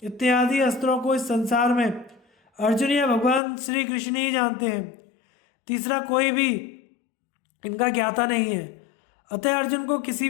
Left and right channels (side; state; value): right; drops out; at 3.4 s